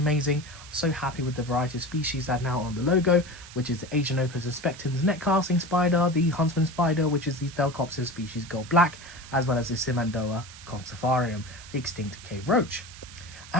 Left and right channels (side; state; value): right; noise; hiss, 17 dB below the sound